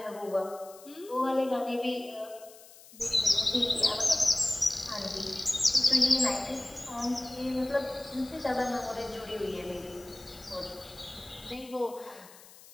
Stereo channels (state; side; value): noise; left; hiss, 21 dB below the sound